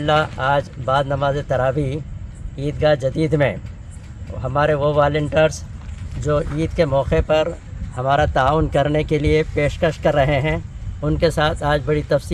آج بعد نماز تراویح عیدگاہ جدید میں ہمارے وہ والنٹرز جو عید کے موقع پر ہمارا تعاون کرنے کے لیے پیشکش کر رہے ہیں، ان کے ساتھ آج بڑی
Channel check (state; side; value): identical; both; correlation 1.00